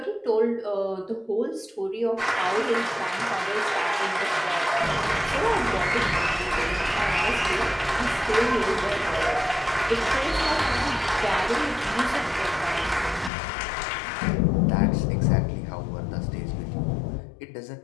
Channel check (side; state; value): right; drops out; at 13.3 s